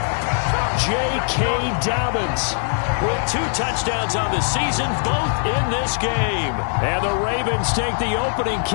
J.K. Dobbins with 2 touchdowns on the season, both in this game. And the Ravens take the opening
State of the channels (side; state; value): right; silent; digital silence